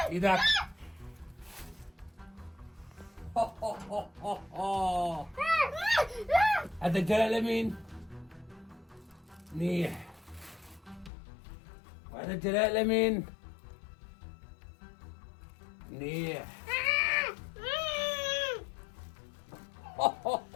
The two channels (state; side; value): drops out; right; at 11.1 s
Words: ايدك. هذا الجلال لمين؟ منيح. وهذا الجلال لمين؟ منيح.